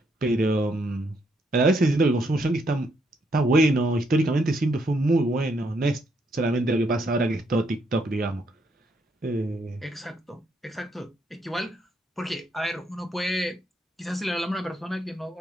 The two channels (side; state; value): both; normal; correlation 0.75